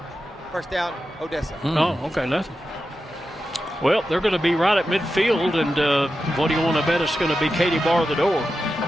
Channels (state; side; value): normal; both; correlation 0.91